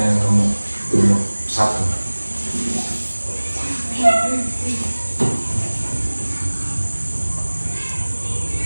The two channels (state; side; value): inverted; both; correlation -1.00